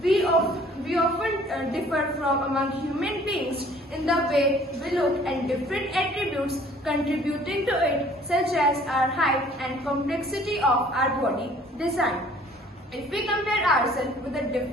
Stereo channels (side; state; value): both; normal; correlation 0.55